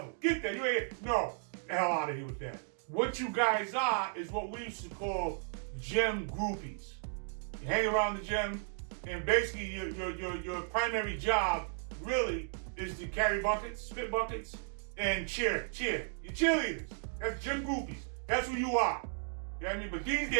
Get that? You ain't no. The hell out of here with that. What you guys are is what we used to call gym groupies. You hang around the gym, and basically your primary job really is to carry buckets, spit buckets, and cheer. You're cheerleaders. That's gym groupies. That's who you are. You know what I mean? But these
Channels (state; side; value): silent; left; digital silence